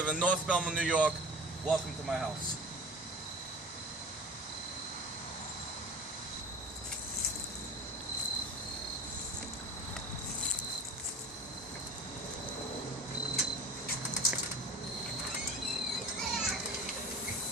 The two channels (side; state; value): both; normal; correlation 0.38